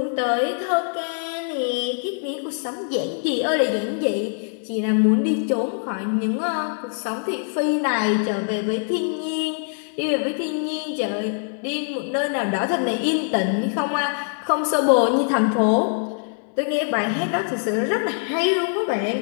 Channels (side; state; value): right; silent; 61 dB below the other